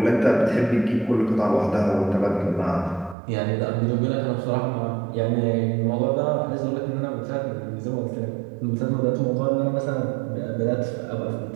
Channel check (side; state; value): left; drops out; at 3.2 s